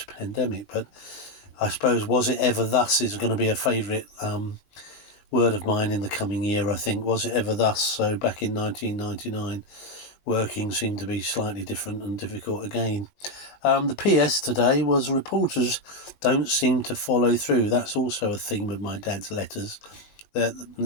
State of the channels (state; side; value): late; right; 20 ms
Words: But I suppose was it ever thus is going to be a favourite word of mine in the coming year, I think. Was it ever thus? So back in 1999, working seemed to be slightly different and difficult again. The PS today was reporters don't seem to follow through. That's also a theme of my dad's letters.